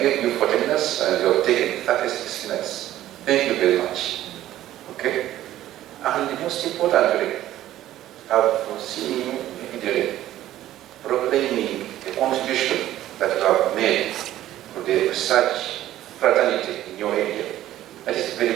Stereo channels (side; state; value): left; quieter; 13.5 dB